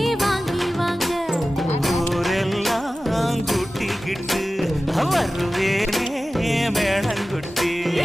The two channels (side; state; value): both; normal; correlation 0.95